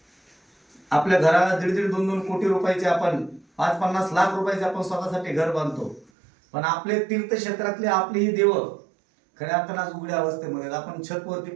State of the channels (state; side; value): drops out; left; at 6.1 s